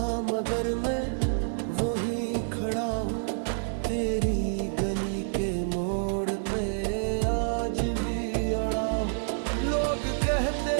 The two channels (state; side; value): silent; left; 59 dB below the other